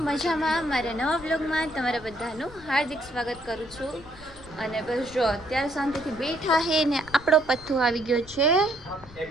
મજામાં? મારા નવા બ્લોગમાં તમારા બધાનું હાર્દિક સ્વાગત કરું છું. અને બસ જો અત્યારે શાંતિથી બેઠા હે ને આપણો પથ્થુ આવી ગયો છે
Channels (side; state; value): left; noise; rumble, 20 dB below the sound